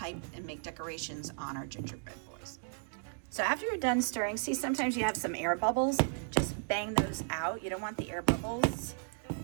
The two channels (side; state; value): left; silent; digital silence